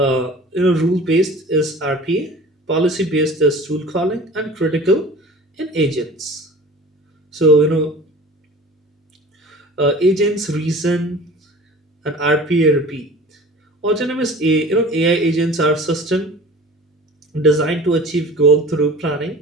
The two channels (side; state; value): both; normal; correlation 0.42